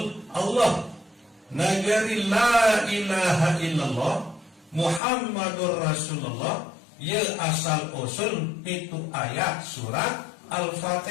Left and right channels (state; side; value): drops out; right; at 5.0 s